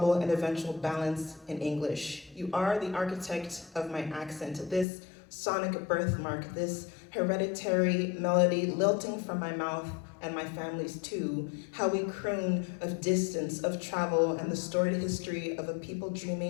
and eventual balance in English. You are the architect of my accent, this sonic birthmark, this hereditary melody lilting from my mouth and my family's too, how we croon of distance, of travel, and the storied history of a people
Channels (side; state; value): right; drops out; at 4.9 s